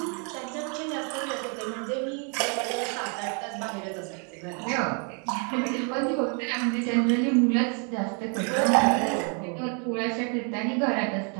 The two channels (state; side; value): quieter; left; 38.0 dB